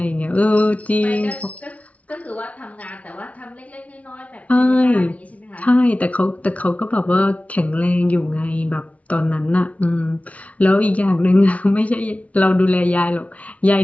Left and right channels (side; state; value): right; late; 0.067 ms